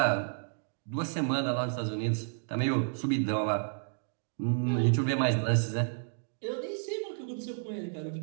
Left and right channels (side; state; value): left; silent; digital silence